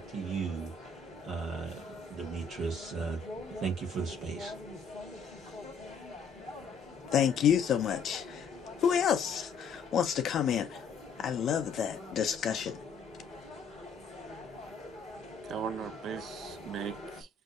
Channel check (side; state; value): right; quieter; 4.9 dB